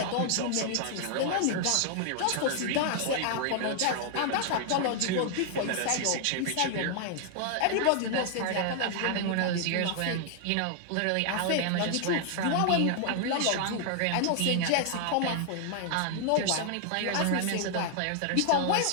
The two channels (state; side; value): different; both; correlation 0.00